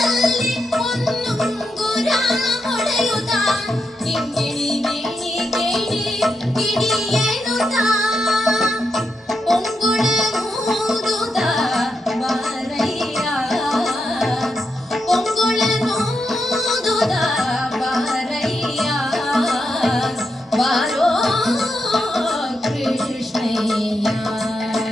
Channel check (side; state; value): both; normal; correlation 0.85